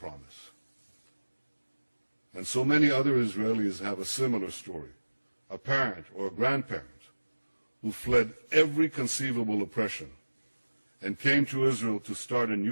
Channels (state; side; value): inverted; both; correlation -1.00